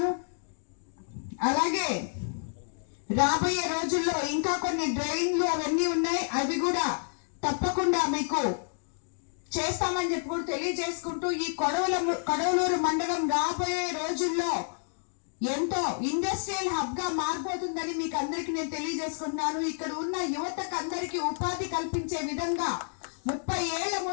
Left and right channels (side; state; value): right; silent; digital silence